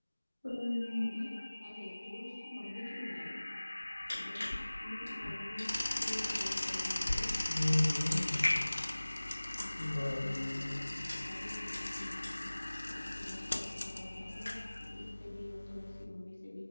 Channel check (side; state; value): both; inverted; correlation -1.00